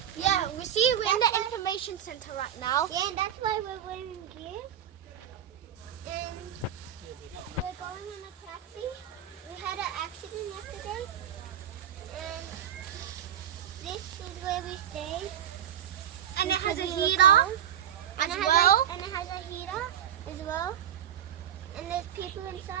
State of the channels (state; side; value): quieter; left; 10.0 dB